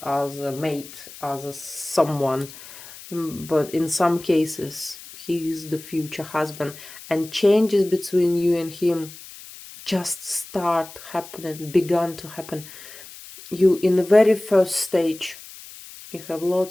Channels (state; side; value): noise; left; hiss, 16 dB below the sound